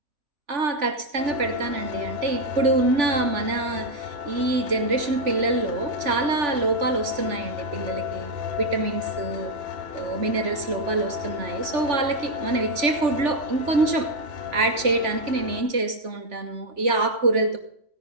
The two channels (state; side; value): late; left; 3.4 ms